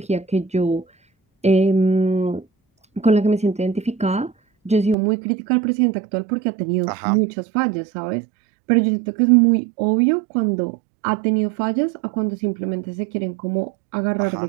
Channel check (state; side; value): drops out; left; at 5.0 s